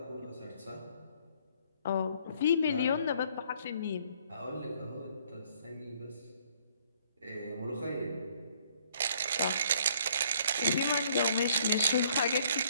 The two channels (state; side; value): inverted; both; correlation -0.62